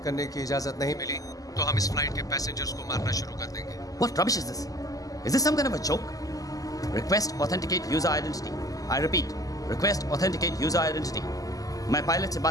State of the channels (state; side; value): late; right; 0.17 ms